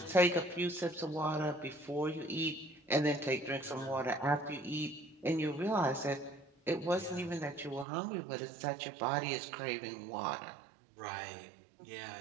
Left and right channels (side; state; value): left; drops out; at 7.9 s